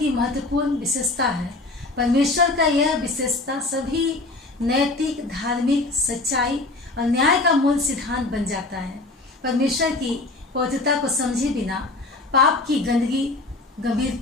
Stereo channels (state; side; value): quieter; right; 3.1 dB